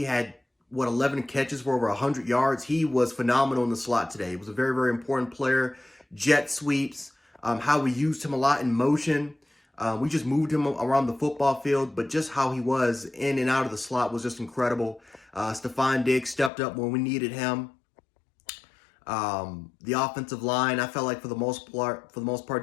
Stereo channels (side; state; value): right; drops out; at 16.5 s